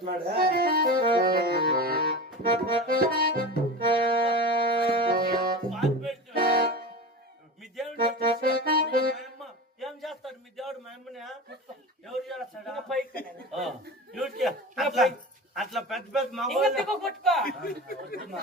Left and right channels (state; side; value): normal; both; correlation 0.29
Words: మీ దేవుడు ఏం చేస్తాడు మీ దేవుడు మా అమ్మని ఎవరు చేస్తాడా అట్లా పెద్ద పెద్ద మా